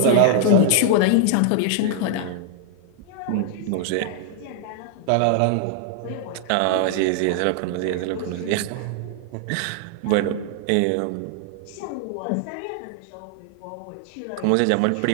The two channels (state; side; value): different; both; correlation -0.01